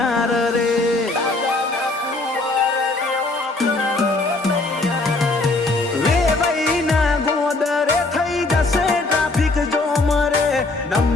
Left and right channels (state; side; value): quieter; right; 3.2 dB